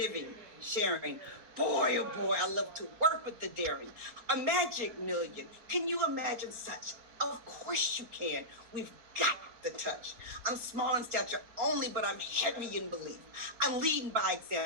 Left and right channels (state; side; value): late; left; 4.5 ms